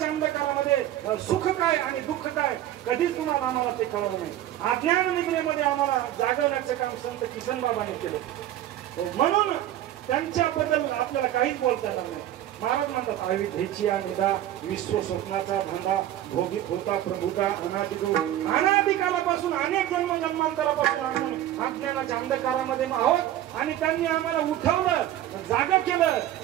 अंधकारामध्ये सुख काय आणि दुःख काय कधीच तुम्हाला आम्हाला ते कळलं नाही. अज्ञान निद्रेमध्ये आम्हाला जागवण्याचं काम संत किसनबाबांनी केलं. म्हणून त्यांच्याबद्दल आपल्याला काहीच बोलता येणार नाही. महाराज म्हणतात आयुधेची निदा विश्व स्वप्नाचा धंदा भोगीत होता प्रभुता अनादिकालापासून अनेक जन्मांतरापासून आपण अज्ञानाच्या अंधकारामध्ये आहोत आणि त्यांनी आम्हाला उठवलं जागा केलं.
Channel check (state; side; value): quieter; left; 12.8 dB